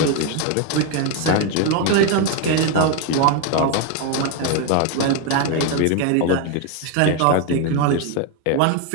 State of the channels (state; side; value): different; both; correlation 0.01